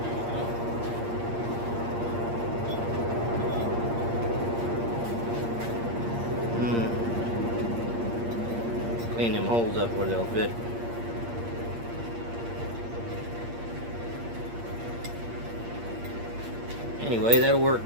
Clean them holes up where they'll fit. Anyway, that'll work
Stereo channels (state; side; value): late; left; 8.6 ms